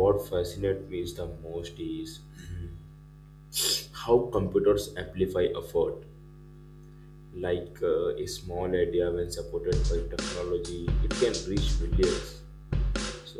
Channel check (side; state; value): both; identical; correlation 1.00